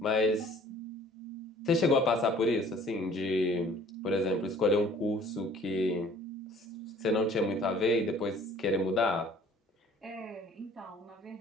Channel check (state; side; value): normal; both; correlation 0.53